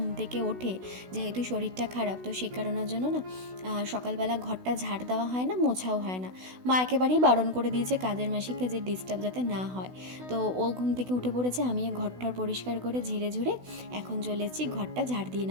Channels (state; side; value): late; left; 16 ms